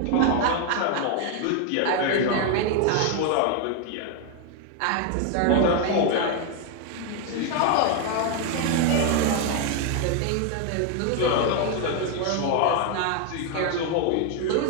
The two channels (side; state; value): both; different; correlation 0.01